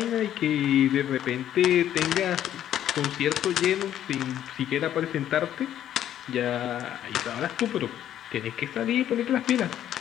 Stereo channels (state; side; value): quieter; right; 11.2 dB